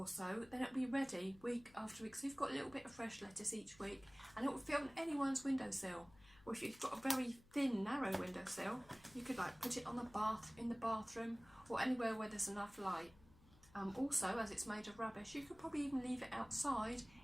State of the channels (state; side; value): noise; left; hum, 24 dB below the sound